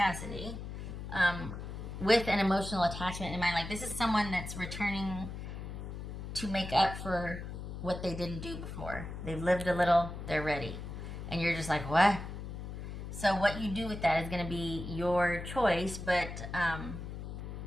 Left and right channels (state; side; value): noise; left; hum, 8 dB below the sound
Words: with an emotional attachment in mind. Like, this is someone that's returning to make up for what they didn't do before. They've lived a little, they're ready. And you're just like, what? So what you do with that is going to be your choice, but